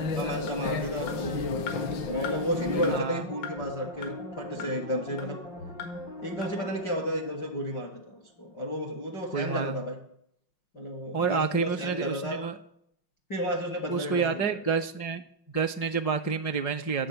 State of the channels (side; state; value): right; late; 5.6 ms